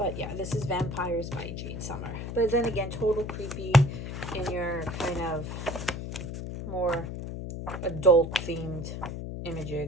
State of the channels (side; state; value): left; noise; hum, 6 dB below the sound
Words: yeah, this is Vampires by Jade Summer. But then again, total creepy in your kind of more adult themed